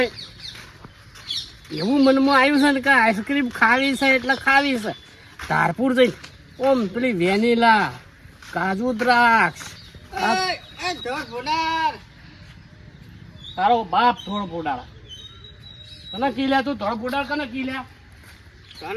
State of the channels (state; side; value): identical; both; correlation 1.00